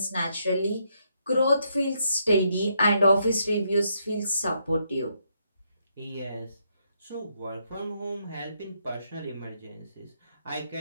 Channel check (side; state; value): both; inverted; correlation -0.76